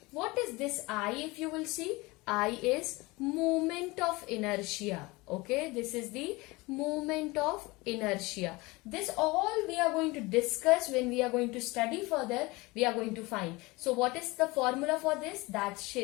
What is this I, if you will see? I is moment of inertia. Okay, this is the moment of inertia. This all we are going to discuss when we are going to study further. We are going to find. So what is the formula for this? That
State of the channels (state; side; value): quieter; right; 23.1 dB